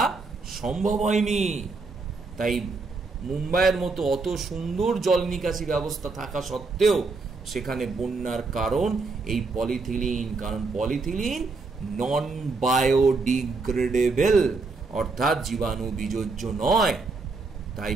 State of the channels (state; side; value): quieter; left; 4.0 dB